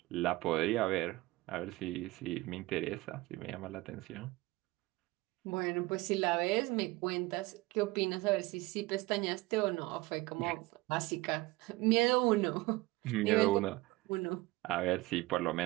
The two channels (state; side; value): quieter; left; 20.6 dB